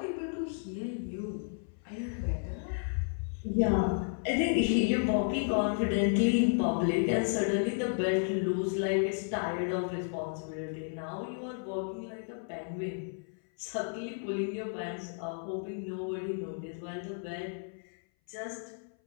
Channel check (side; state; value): right; silent; 56 dB below the other